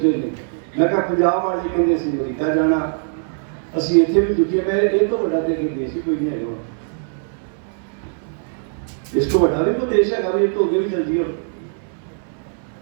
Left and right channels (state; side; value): silent; left; digital silence